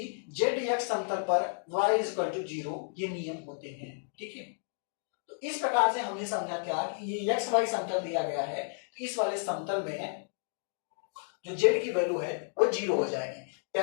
ZX समतल पर y = 0, ये नियम होते हैं। ठीक है, तो इस प्रकार से हमने समझा क्या कि ये XY समतल दिया गया है तो इस वाले समतल में जो Z की वैल्यू है वो 0 हो जाएगी।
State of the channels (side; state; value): right; silent; digital silence